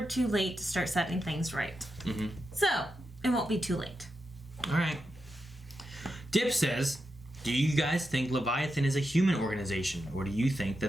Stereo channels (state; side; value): normal; both; correlation 0.87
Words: too late to start setting things right. Mm-hmm. So, it won't be too late. All right. Dip says, do you guys think Leviathan is a human organization, or do you think